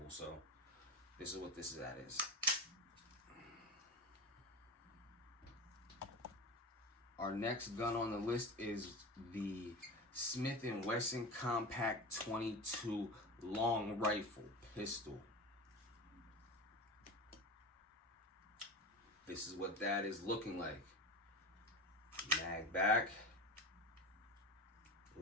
So this is what this is. Our next gun on the list is the Smith & Wesson Compact 22 long rifle pistol. this is what that is looking like. Mag back,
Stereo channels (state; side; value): normal; both; correlation 0.27